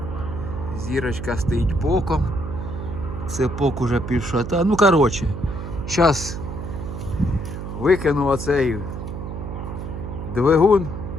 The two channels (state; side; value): noise; right; hum, 7 dB below the sound